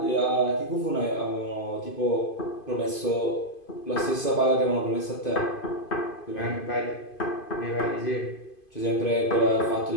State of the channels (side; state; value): right; late; 2.5 ms